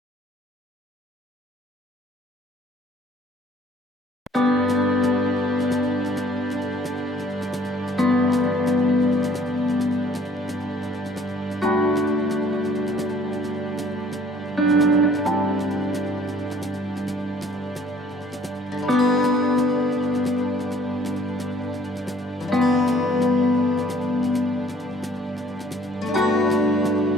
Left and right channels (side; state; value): both; normal; correlation 0.58